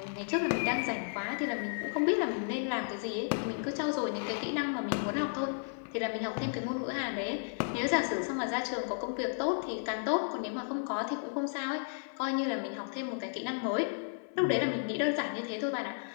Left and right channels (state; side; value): silent; right; 56 dB below the other